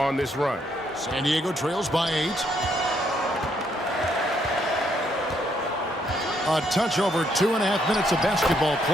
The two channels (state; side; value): normal; both; correlation 0.72